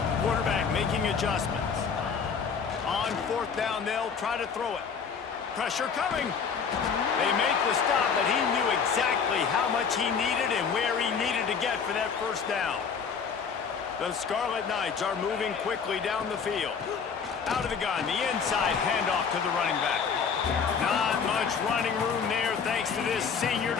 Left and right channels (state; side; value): quieter; right; 6.2 dB